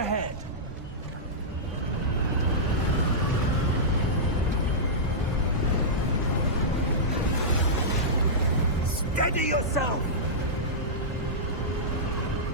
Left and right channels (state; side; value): normal; both; correlation -0.13